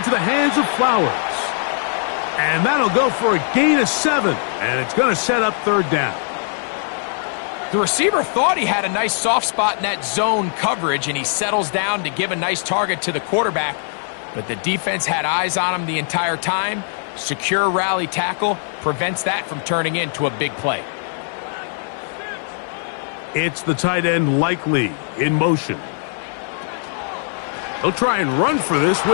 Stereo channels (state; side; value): silent; right; 57 dB below the other